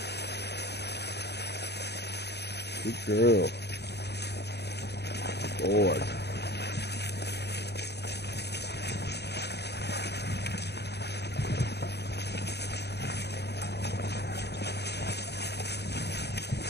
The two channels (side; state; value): right; late; 0.48 ms